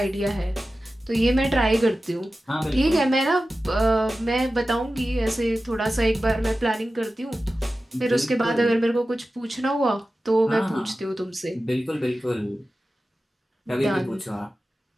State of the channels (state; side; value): normal; both; correlation 0.94